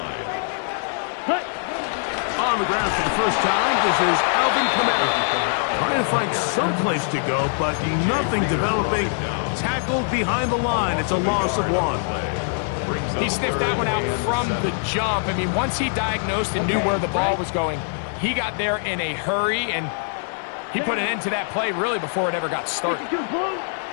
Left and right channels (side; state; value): right; silent; digital silence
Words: On the ground for the first time, this is Alvin Kamara. Trying to find some place to go, but nothing developing. Tackled behind the line. It's a loss of 1. He sniffed that one out from the jump. I mean, once he diagnosed and knew where the ball was going, he got there in a hurry, and he put an end to that play really before it ever got started.